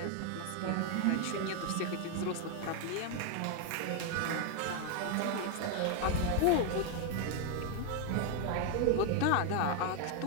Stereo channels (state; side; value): different; both; correlation 0.01